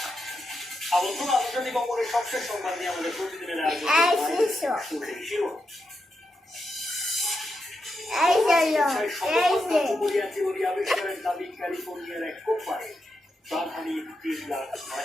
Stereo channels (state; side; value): normal; both; correlation 0.85